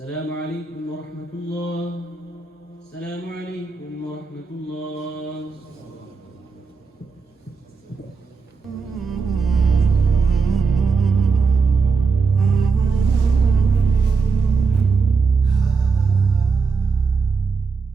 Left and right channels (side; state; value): left; quieter; 4.9 dB